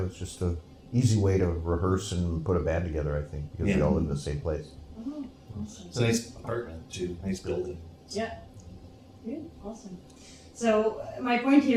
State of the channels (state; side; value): identical; both; correlation 1.00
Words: was just a easy way to rehearse and put a band together. I think because we all live in the same place. Oh, awesome. It's a nice apartment too, nice building. Yeah. Good. Awesome. So my point